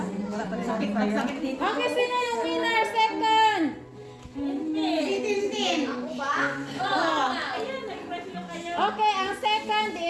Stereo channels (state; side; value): identical; both; correlation 1.00